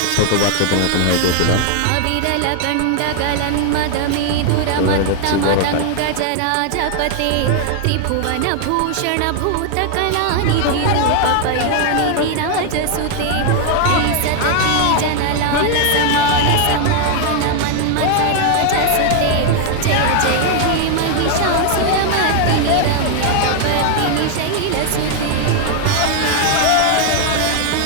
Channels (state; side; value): different; both; correlation 0.00